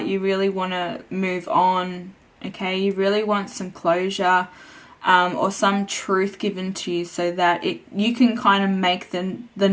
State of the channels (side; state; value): both; identical; correlation 1.00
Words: you really want to move on, okay? You really want some closure or some truth given to you so that you can kind of make the